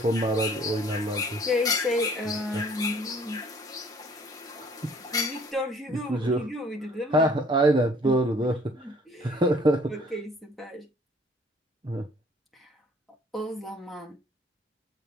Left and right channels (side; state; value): both; normal; correlation 0.56